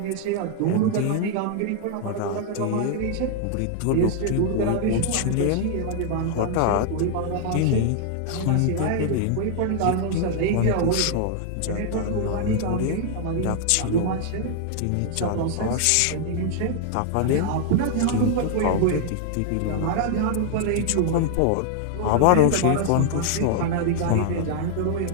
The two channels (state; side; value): different; both; correlation -0.01